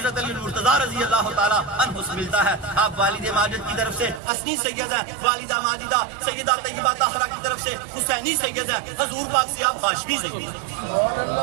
علی المرتضیٰ رضی اللہ تعالیٰ عنہ سے ملتا ہے۔ آپ والد ماجد کی طرف سے حسنی سید ہیں، والدہ ماجدہ سیدہ طیبہ طاہرہ کی طرف سے حسینی سید ہیں، حضور پاک سے آپ ہاشمی سید ہیں۔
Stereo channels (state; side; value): drops out; left; at 4.2 s